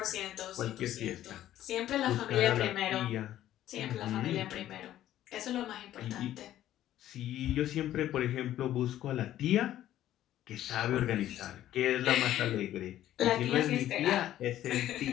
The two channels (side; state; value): right; quieter; 12.8 dB